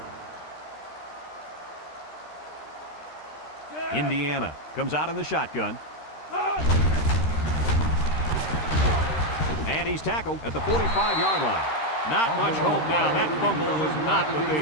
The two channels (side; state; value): right; late; 13 ms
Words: Indiana comes out in the shotgun. And he's tackled at the 45-yard line. Not much hope now. That fumble was not what they